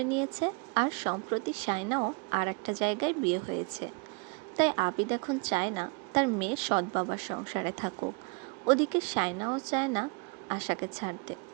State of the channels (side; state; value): left; quieter; 33.0 dB